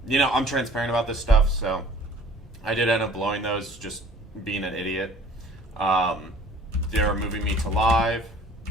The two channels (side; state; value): both; normal; correlation 0.52